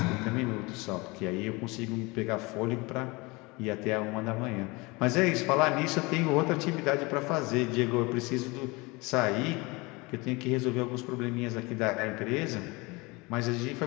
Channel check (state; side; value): quieter; right; 25.0 dB